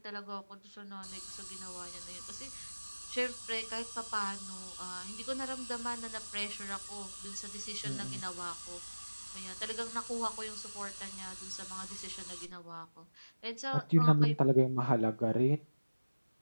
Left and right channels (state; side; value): inverted; both; correlation -1.00